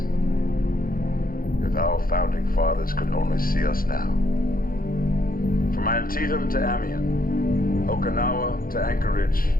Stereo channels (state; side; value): late; right; 0.42 ms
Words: If our founding fathers could only see us now. From Antietam to Amiens, Okinawa to Anchorage,